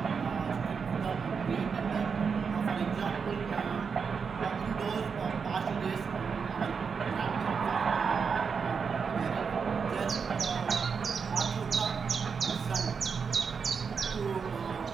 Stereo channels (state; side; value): quieter; left; 5.9 dB